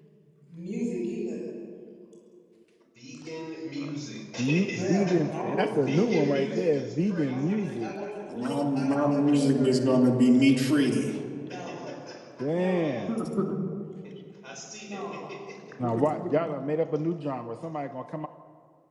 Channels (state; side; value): identical; both; correlation 1.00